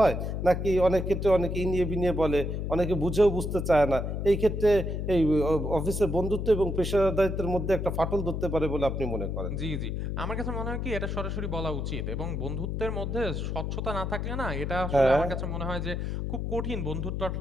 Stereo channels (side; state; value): left; noise; hum, 3 dB below the sound